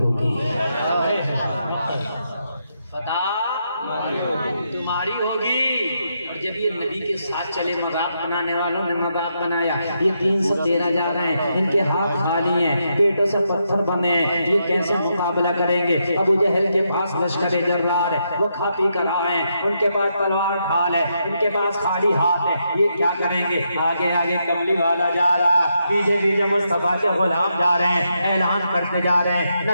फतह तुम्हारी होगी। और जब ये नबी के साथ चले, मजाक बनाने वालों ने मजाक बनाया, ये 313 जा रहे हैं, इनके हाथ खाली हैं, पेटों से पत्थर बने हैं, ये कैसे मुकाबला करेंगे। अबू जहल के पास लश्कर जर्रार है, वो खा पी कर आए हैं, उनके पास तलवार ढाल है, इनके पास खाली हाथ है, ये क्या करेंगे। आगे आगे कमली वाला जा रहा है, पीछे पीछे मुस्तफा के गुलाम जा रहे हैं, ऐलान करते जा रहे हैं, न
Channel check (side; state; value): both; inverted; correlation -0.81